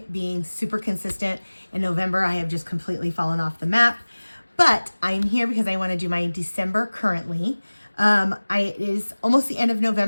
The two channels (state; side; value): inverted; both; correlation -1.00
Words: being super consistent in November. I have just completely fallen off the map, but I'm here because I want to do my December currently. It is almost the end of